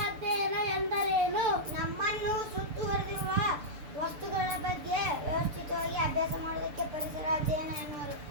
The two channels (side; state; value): left; late; 6.8 ms